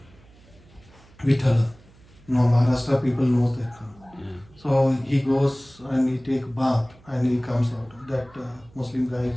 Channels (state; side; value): noise; right; hum, 26 dB below the sound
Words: Vithala. Maharashtra people know that. So he goes and he take bath and he comes out. That Muslim guy